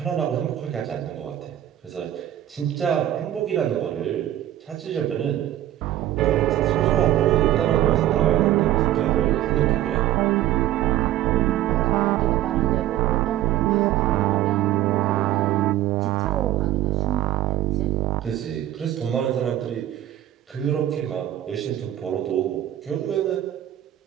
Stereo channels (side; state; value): left; quieter; 13.0 dB